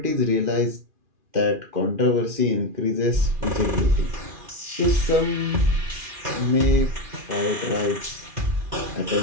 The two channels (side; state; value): left; late; 2.4 ms